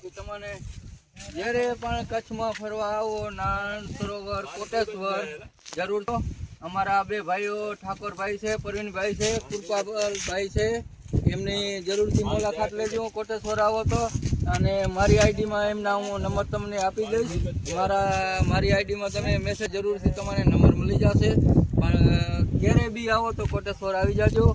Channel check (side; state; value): both; identical; correlation 1.00